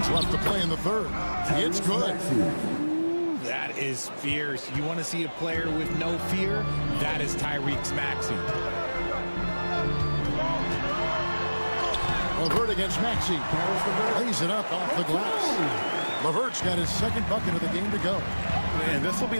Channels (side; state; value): both; inverted; correlation -1.00